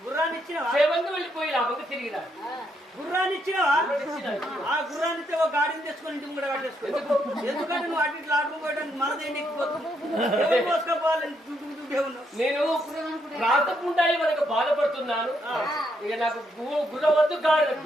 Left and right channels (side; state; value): both; normal; correlation 0.76